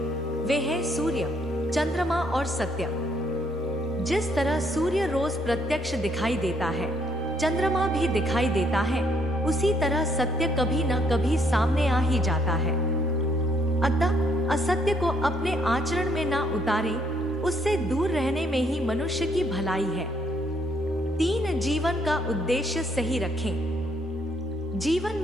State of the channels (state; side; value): normal; both; correlation 0.70